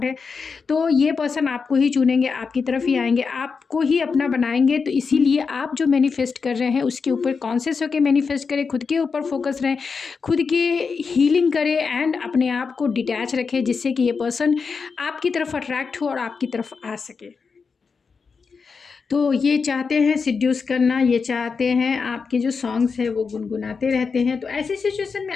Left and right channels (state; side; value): quieter; right; 5.2 dB